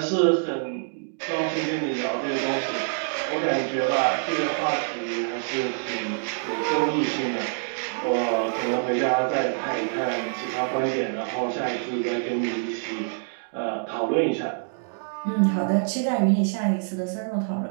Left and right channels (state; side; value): silent; left; digital silence